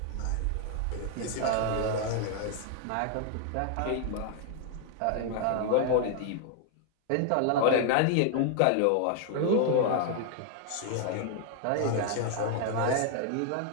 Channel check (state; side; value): different; both; correlation 0.00